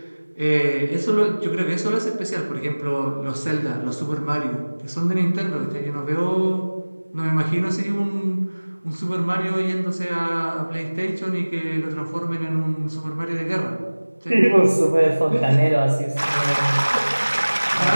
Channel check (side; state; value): both; inverted; correlation -1.00